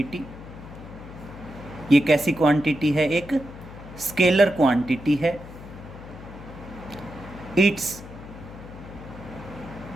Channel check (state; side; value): noise; left; hum, 15 dB below the sound